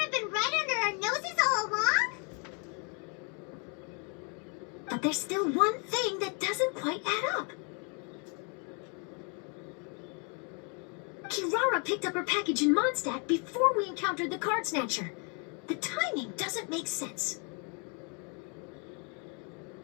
been right under our noses all along? But there's still one thing that doesn't quite add up. Kirara picked up her package in Mondstadt before we encountered the card snatcher. The timing doesn't make sense.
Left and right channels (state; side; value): quieter; right; 36.2 dB